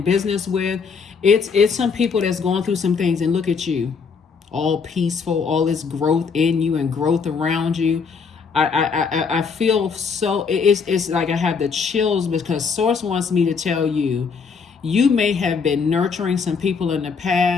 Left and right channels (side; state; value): right; quieter; 5.6 dB